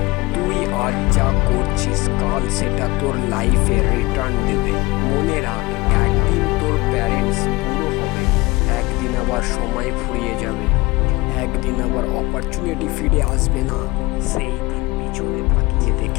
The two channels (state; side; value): quieter; right; 22.0 dB